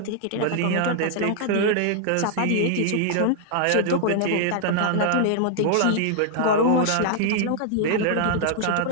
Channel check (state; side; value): different; both; correlation 0.00